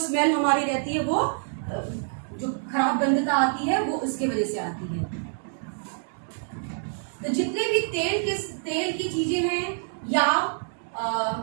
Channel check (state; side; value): silent; left; digital silence